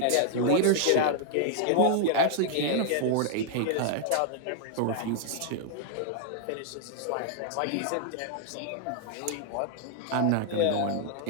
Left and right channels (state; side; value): different; both; correlation 0.00